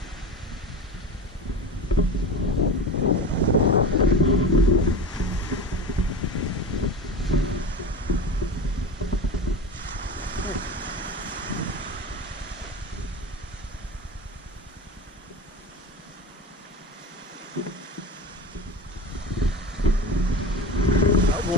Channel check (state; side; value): normal; both; correlation 0.29